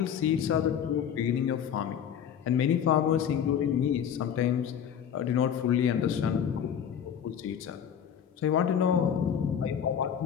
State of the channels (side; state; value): right; quieter; 8.6 dB